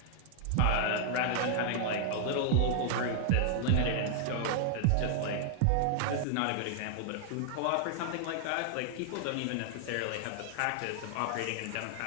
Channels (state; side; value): different; both; correlation 0.00